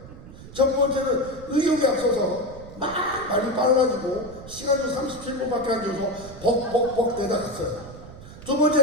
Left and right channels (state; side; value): noise; right; rumble, 16 dB below the sound